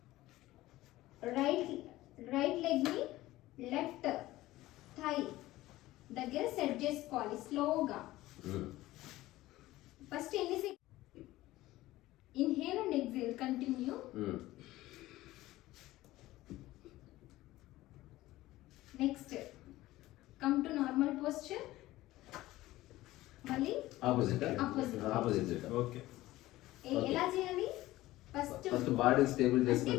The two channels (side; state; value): right; quieter; 16.9 dB